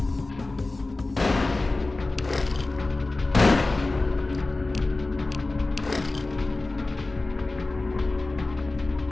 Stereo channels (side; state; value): right; quieter; 3.2 dB